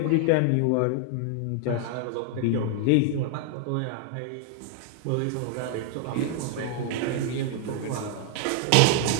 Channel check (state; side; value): different; both; correlation 0.00